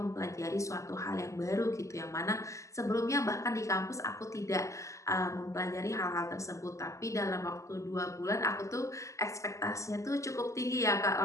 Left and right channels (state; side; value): late; right; 0.15 ms